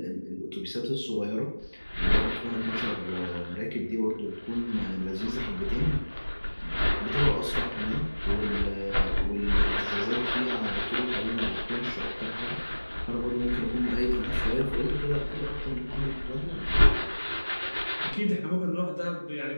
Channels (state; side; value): inverted; both; correlation -1.00